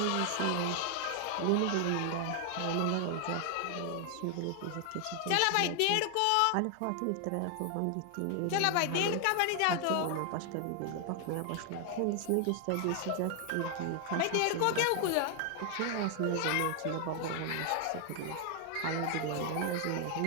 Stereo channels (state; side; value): different; both; correlation 0.00